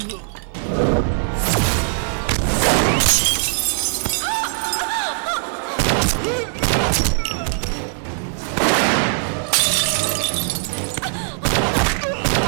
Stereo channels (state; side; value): silent; left; 66 dB below the other